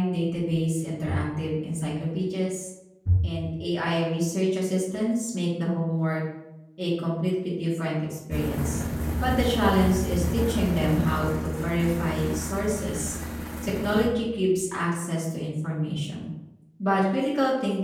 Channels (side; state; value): both; identical; correlation 1.00